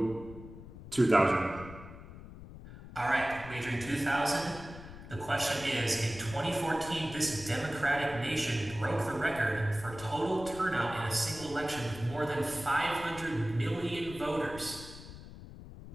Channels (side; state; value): left; noise; rumble, 14 dB below the sound